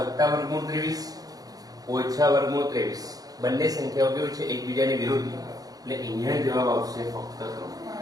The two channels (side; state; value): left; late; 0.18 ms